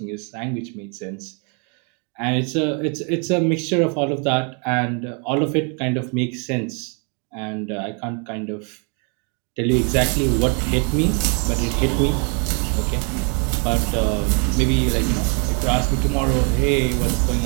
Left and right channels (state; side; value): quieter; left; 37.2 dB